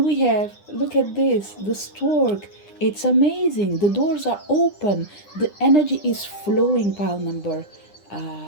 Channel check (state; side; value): late; right; 9.9 ms